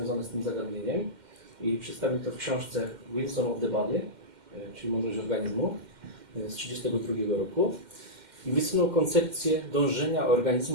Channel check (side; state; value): left; late; 2.1 ms